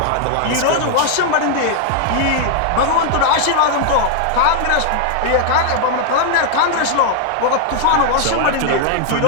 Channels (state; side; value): different; both; correlation 0.00